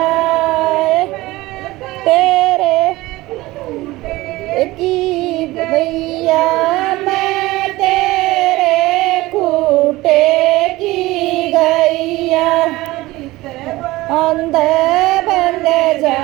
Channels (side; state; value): left; quieter; 19.1 dB